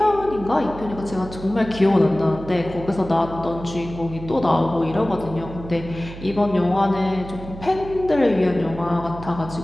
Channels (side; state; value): right; noise; hum, 13 dB below the sound